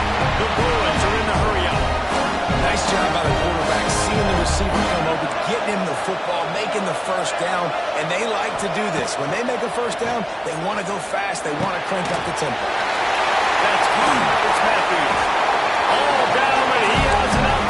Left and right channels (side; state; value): both; identical; correlation 1.00